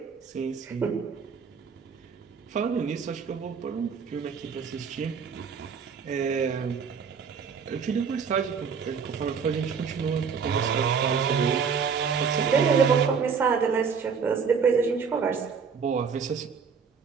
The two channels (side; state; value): left; quieter; 6.1 dB